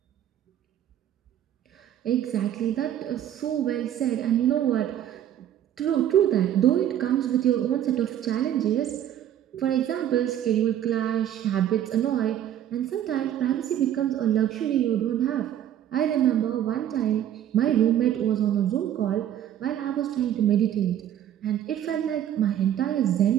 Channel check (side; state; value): left; quieter; 10.9 dB